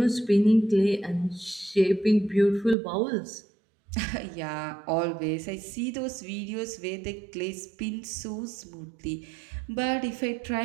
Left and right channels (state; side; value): drops out; left; at 2.8 s